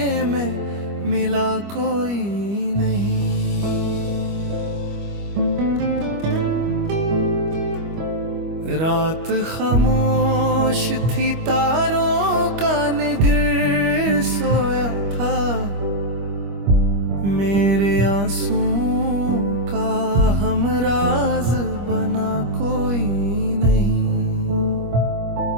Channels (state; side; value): late; left; 25 ms